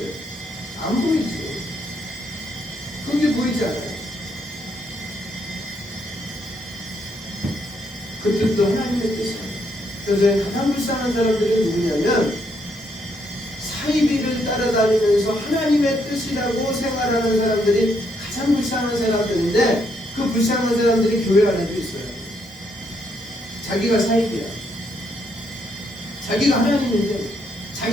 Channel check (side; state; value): both; normal; correlation 0.75